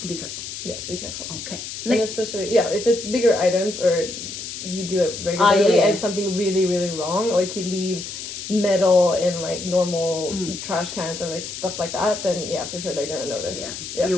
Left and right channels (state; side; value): noise; left; hiss, 8 dB below the sound